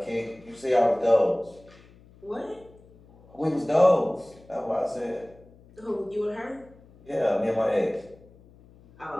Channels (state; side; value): noise; left; hum, 25 dB below the sound